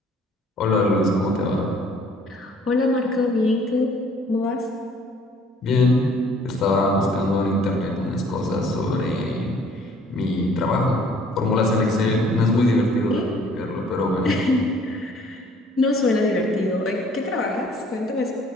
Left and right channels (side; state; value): both; normal; correlation 0.57